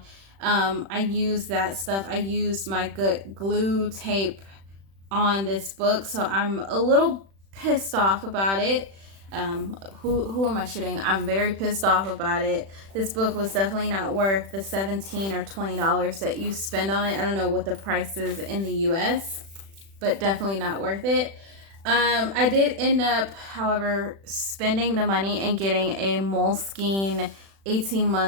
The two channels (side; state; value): left; late; 36 ms